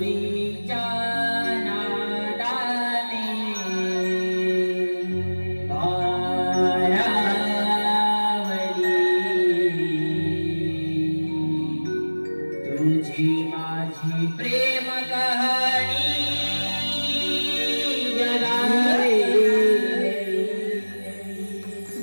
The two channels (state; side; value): inverted; both; correlation -1.00